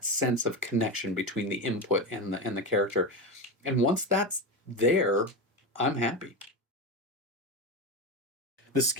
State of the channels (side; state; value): both; normal; correlation 0.19